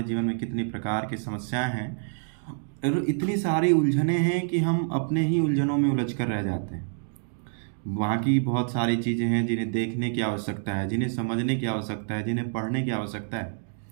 जीवन में कितनी प्रकार की समस्याएं हैं और इतनी सारी उलझनें हैं कि हम अपने ही उलझनों में उलझ कर रह जाते हैं। वहाँ की बहुत सारी चीज़ें हैं जिन्हें देखने की आवश्यकता है, जिन्हें समझने की आवश्यकता है, जिन्हें पढ़ने की आवश्यकता है।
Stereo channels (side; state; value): left; silent; digital silence